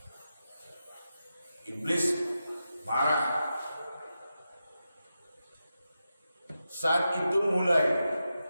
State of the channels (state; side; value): inverted; both; correlation -0.89